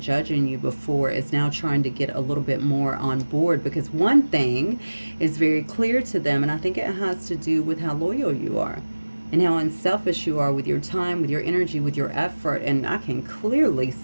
judging you before is now trying to get a little bit more on board, because one thing is very clear to them, and I think it has to do with how loyal you are and how unselfish you are with your time, with your energy, with your effort. And I can clearly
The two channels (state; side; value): inverted; both; correlation -1.00